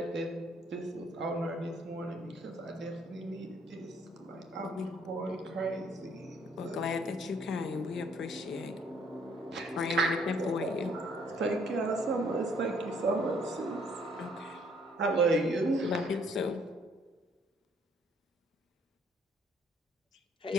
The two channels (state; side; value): normal; both; correlation 0.64